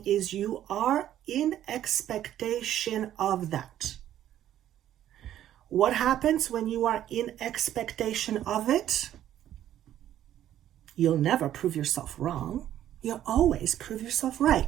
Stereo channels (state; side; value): quieter; left; 11.8 dB